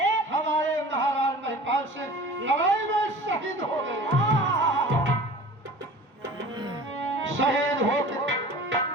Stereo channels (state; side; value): normal; both; correlation 0.41